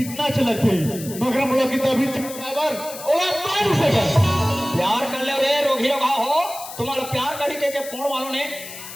अच्छा लगते मगर हम लोग की तभी बराबर ओला मान सके प्यार कर ले रे रोगी रोगा हो तुम्हारा प्यार करी के पोण वालों ने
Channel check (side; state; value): left; noise; hiss, 12 dB below the sound